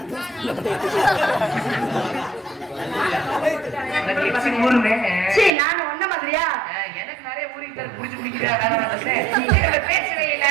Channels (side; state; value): left; drops out; at 5.5 s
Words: நான் ஒன்ன மாதிரியா எனக்கு நிறைய ஊருக்கு புடிச்சு குடிக்கிறேன் பேசவே இல்ல